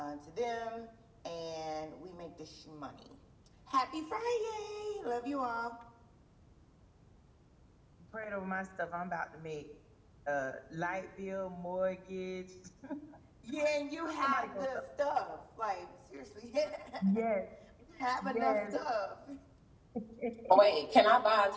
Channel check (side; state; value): both; identical; correlation 1.00